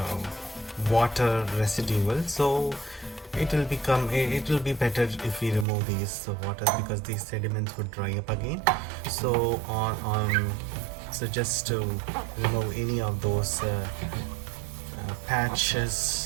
water residual. So it will be better if we remove these water, because these sediments would dry up again. So so just to remove any of those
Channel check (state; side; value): drops out; left; at 5.7 s